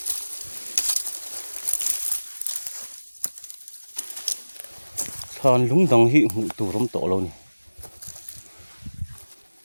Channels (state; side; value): inverted; both; correlation -1.00